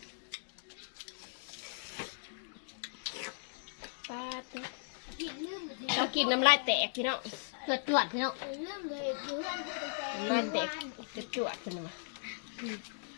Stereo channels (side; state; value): right; silent; digital silence